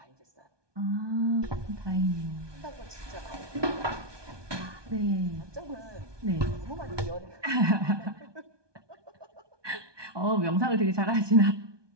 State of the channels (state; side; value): late; left; 1.2 ms